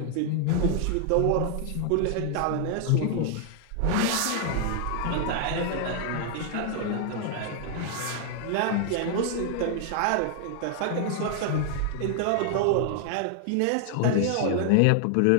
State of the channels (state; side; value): different; both; correlation 0.00